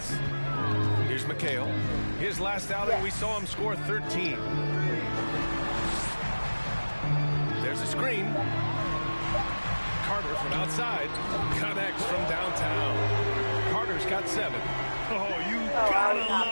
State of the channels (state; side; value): inverted; both; correlation -1.00